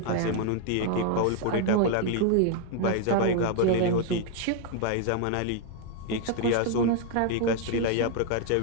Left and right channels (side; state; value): both; different; correlation 0.00